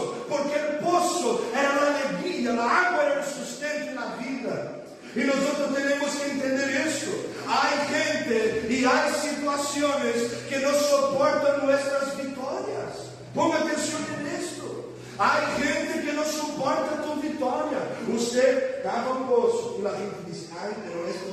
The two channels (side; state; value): both; identical; correlation 1.00